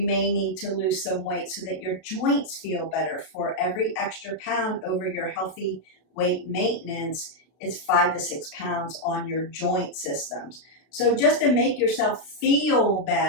may need to lose some weight so that your joints feel better. For every extra pound over your healthy weight maintenance, it's 5 to 6 pounds on your joint systems. So just to make yourself feel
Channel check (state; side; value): late; right; 32 ms